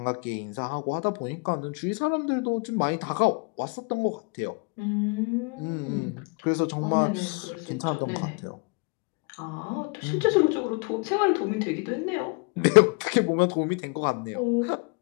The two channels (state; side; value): quieter; right; 31.8 dB